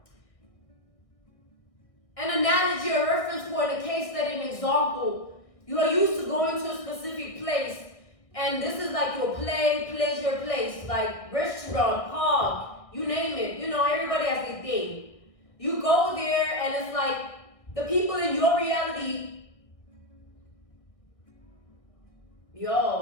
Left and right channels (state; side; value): late; right; 1.6 ms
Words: an analogy, a reference point, a case study, an example. You are used to going to a specific place, and this is like your pleasure place, like restaurant, park, you name it. You know, everybody has their thing. You go there, and it's like the people in your reality,